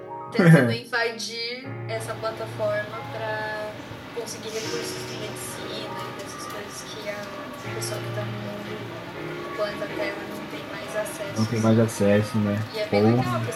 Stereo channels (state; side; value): identical; both; correlation 1.00